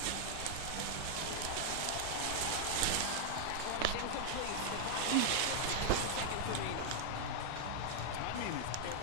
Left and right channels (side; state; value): both; different; correlation -0.01